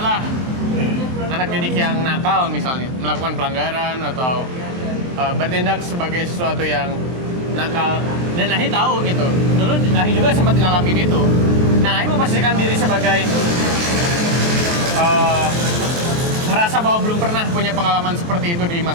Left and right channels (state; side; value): late; left; 23 ms